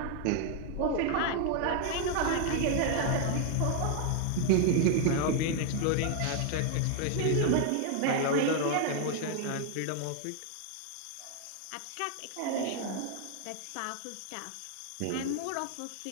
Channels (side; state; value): both; different; correlation 0.00